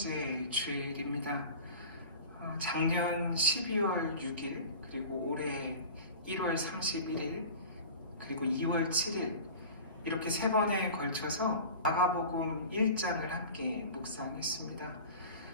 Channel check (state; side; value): inverted; both; correlation -0.37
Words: 주일입니다. 작년 12월 6일, 그리고 올해 1월 31일, 그리고 2월 7일 이렇게 세 번에 걸쳐서 마가복음 1장을 함께 묵상했습니다.